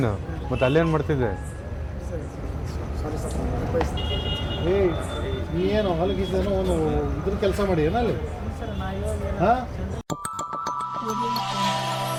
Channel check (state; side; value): identical; both; correlation 1.00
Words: ಮತ್ತೆ ಅಲ್ಲೇನು ಮಾಡ್ತಿದ್ದೆ? ನೀ ಏನು ಹೊಲಗಿದ್ದೇನೋ ಒಂದು ಇದ್ರ ಕೆಲಸ ಮಾಡಿ ಏನಲ್ಲಿ ಹಾಂ.